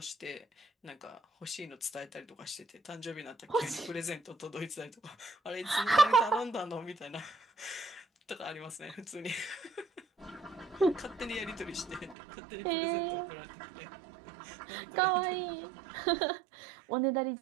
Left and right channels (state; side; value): drops out; left; at 12.2 s